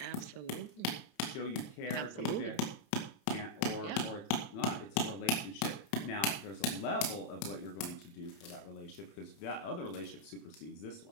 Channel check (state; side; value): late; right; 28 ms